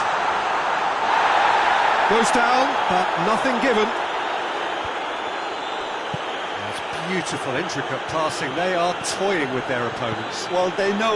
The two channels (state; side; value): identical; both; correlation 1.00